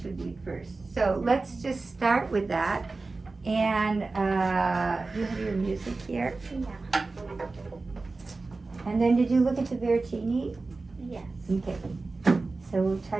with you first. So let's just start with that. And you have your music here? Yeah. And then did you look at the Veracini? Yes. Okay. So we'll try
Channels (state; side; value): quieter; left; 3.7 dB